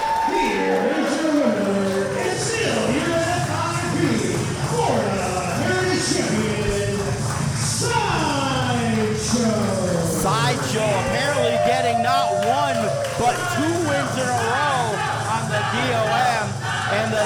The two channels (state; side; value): identical; both; correlation 1.00